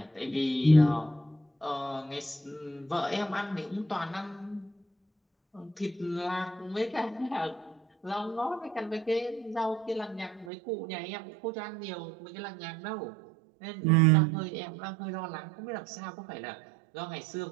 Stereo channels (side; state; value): left; drops out; at 10.5 s